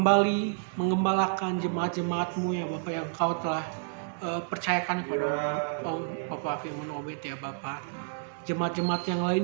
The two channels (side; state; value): left; silent; digital silence